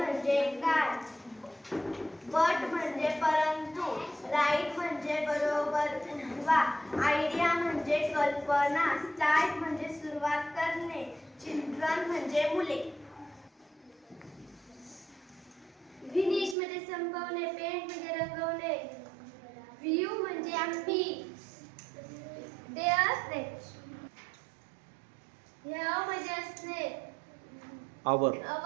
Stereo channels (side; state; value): left; drops out; at 16.6 s